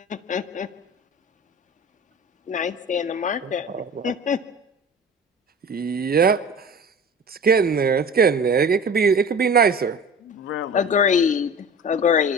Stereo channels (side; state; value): both; normal; correlation 0.37